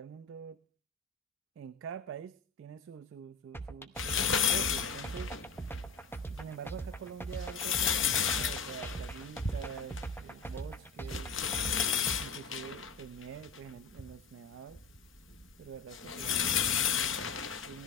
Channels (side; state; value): right; quieter; 5.0 dB